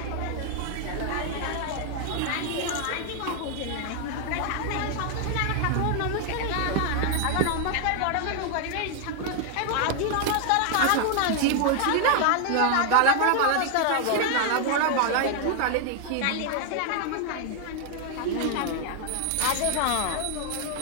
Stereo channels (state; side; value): different; both; correlation 0.00